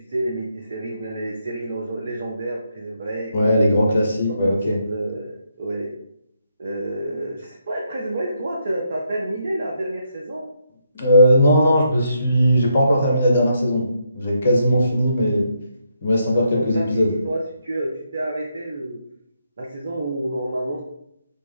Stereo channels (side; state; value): both; inverted; correlation -0.78